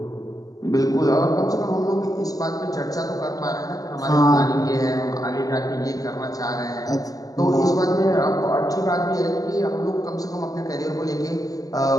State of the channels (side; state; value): right; late; 0.17 ms